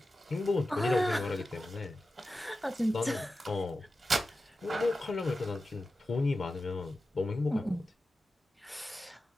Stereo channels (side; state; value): both; normal; correlation 0.93